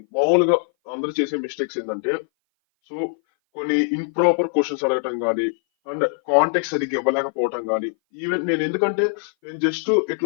మామూలుగా అందరూ చేసే మిస్టేక్స్ ఏంటంటే సో కొన్ని ఇంప్రాపర్ క్వశ్చన్స్ అడగటం కానీ అండ్ కాంటెక్ట్ సరిగ్గా ఇవ్వలేకపోవటం కానీ ఈవెన్ ఎందుకంటే నేను జస్ట్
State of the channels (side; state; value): right; silent; 59 dB below the other